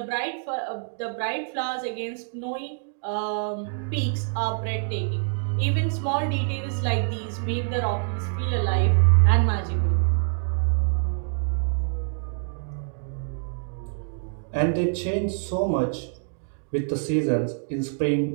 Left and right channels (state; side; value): silent; left; digital silence